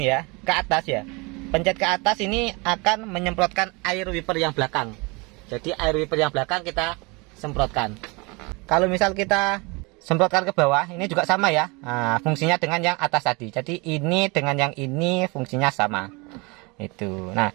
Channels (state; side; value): quieter; left; 27.4 dB